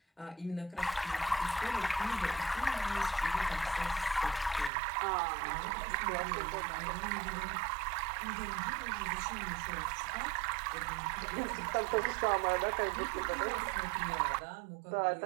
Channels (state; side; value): drops out; left; at 4.7 s